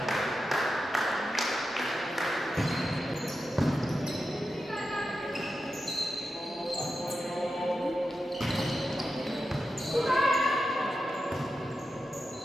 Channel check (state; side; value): normal; both; correlation 0.90